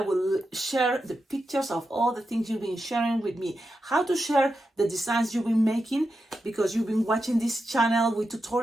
share the pictures of all the things you've been sharing with me. How to share the designs you've been making, because you've been watching this channel with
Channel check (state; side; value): normal; both; correlation 0.88